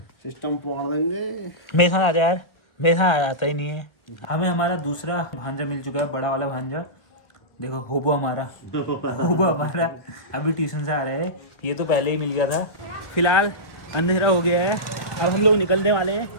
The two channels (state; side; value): late; right; 1.4 ms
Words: सिस्टम फाड़ देंगे। मेरे साथ आ जा यार, मेरे साथ आता ही नहीं है। हमें हमारा दूसरा भांजा मिल चुका है, बड़ा वाला भांजा। देखो होबो हमारा अभी ट्यूशन से आ रहे हैं। ये तो पहले ही मिल गया था। फिलहाल अंधेरा हो गया है, अब हम लोग निकलने वाले हैं।